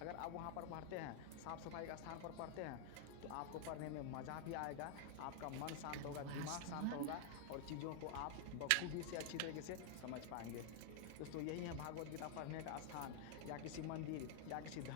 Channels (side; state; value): both; different; correlation 0.00